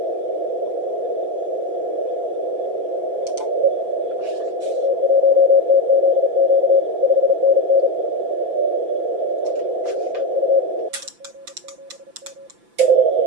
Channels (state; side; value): late; left; 5.9 ms